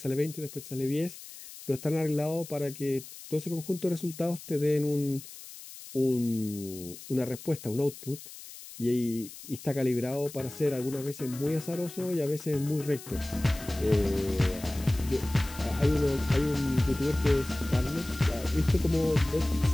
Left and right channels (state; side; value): noise; left; hiss, 15 dB below the sound